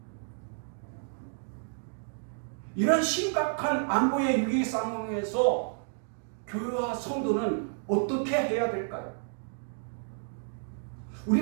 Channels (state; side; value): silent; left; digital silence